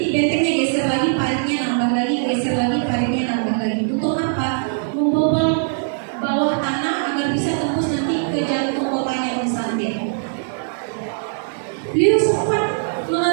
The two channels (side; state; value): left; silent; digital silence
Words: bentengnya geser lagi, paritnya nambah lagi, geser lagi, paritnya nambah lagi. Untuk apa? Membobol bawah tanah agar bisa tembus nanti ke jantung kotanya Konstantin. Beliau sempat